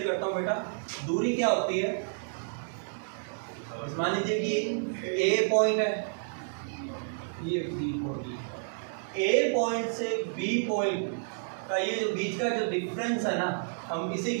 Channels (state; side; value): silent; left; digital silence